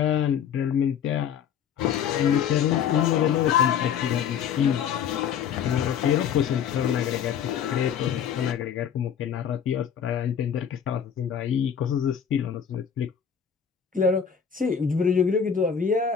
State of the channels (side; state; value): right; quieter; 8.0 dB